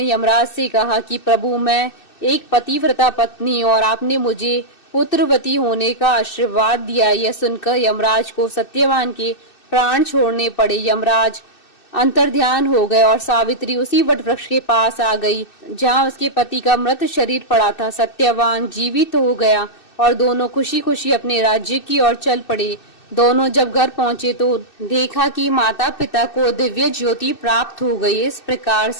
यमराज से कहा कि प्रभु, मैं एक पतिव्रता पत्नी और आपने मुझे पुत्रवती होने का आशीर्वाद दिया। यह सुनकर यमराज को सत्यवान के प्राण छोड़ने पड़े। यमराज अंतर्ध्यान हो गए और सावित्री उसी वट वृक्ष के पास आ गई जहां उसके पति का मृत शरीर पड़ा था। सत्यवान जीवित हो गया और दोनों खुशी खुशी अपने राज्य की ओर चल पड़े। दोनों जब घर पहुंचे तो देखा कि माता पिता को दिव्य ज्योति प्राप्त हो गई। इस प्रकार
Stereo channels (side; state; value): right; late; 2.6 ms